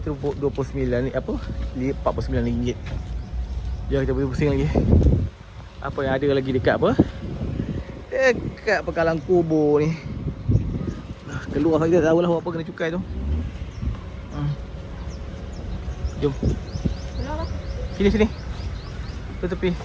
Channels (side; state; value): both; identical; correlation 1.00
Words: tu 29 ni apa? RM49. Jom kita pergi pusing lagi. Apa yang ada lagi dekat apa? Dekat Pekalang Kubur ni. Keluar kita tahu lah apa kena cukai tu. Jom. Sini. Ke tepi.